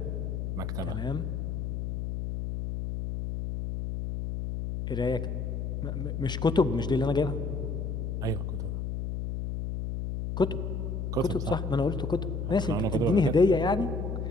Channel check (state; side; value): noise; left; hum, 3 dB below the sound